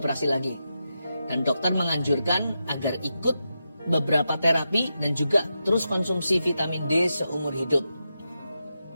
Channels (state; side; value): inverted; both; correlation -0.88